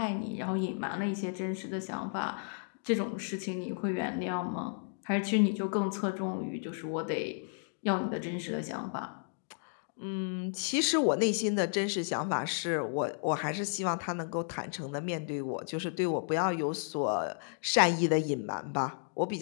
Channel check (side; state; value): right; silent; digital silence